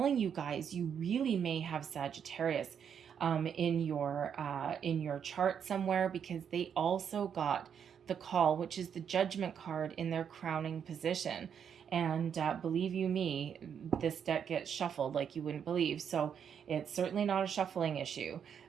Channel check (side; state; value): left; quieter; 7.9 dB